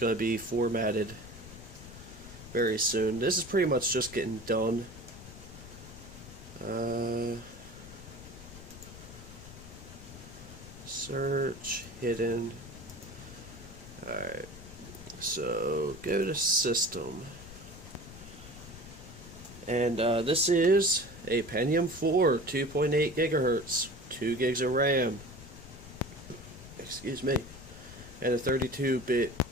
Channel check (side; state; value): left; noise; rumble, 15 dB below the sound